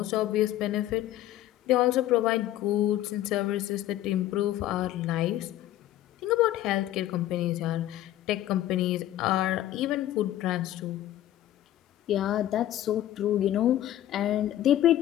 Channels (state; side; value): quieter; right; 13.3 dB